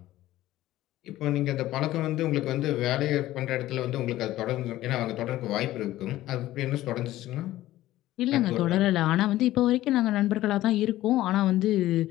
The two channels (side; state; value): right; quieter; 15.3 dB